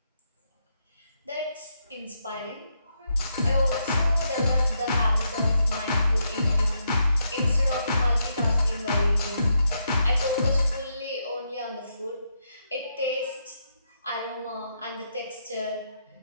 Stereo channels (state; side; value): inverted; both; correlation -0.80